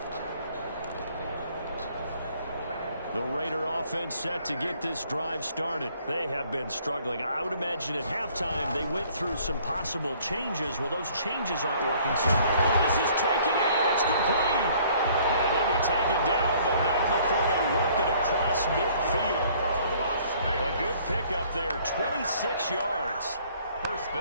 The Raider offense set to get this drive started. They have been struggling. I would imagine at halftime they went through some possible changes. Well, those changes aren't working so well. Oh, this is taken in. It's complete. And he'll be taken down, but not before they work it across midfield. A good pickup there, 26 yards. 1st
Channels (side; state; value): both; inverted; correlation -0.58